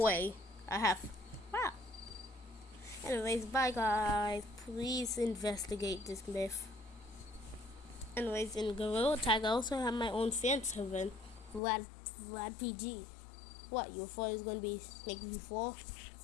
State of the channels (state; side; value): drops out; right; at 11.6 s